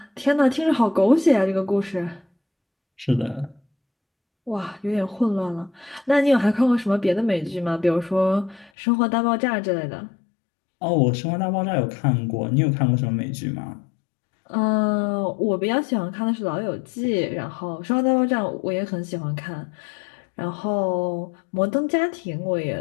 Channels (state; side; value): drops out; right; at 8.7 s